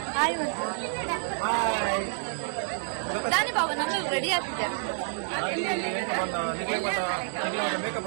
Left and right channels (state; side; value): silent; left; digital silence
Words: ಹಾಯ್ ದಾನಿ ಬಾಬಾ ನಾನು ರೆಡಿ ಆಗ್ತಿದ್ದೆ.